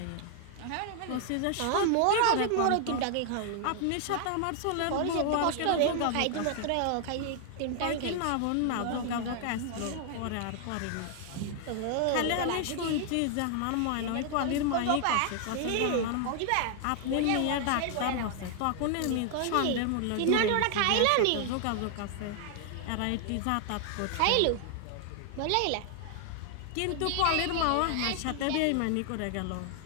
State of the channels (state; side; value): different; both; correlation 0.00